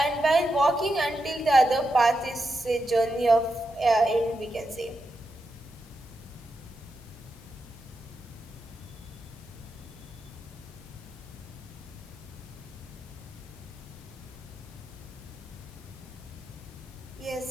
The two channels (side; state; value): both; normal; correlation 0.86